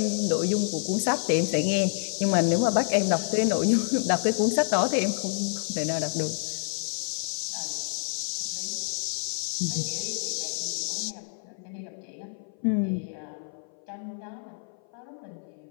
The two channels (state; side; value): silent; right; 56 dB below the other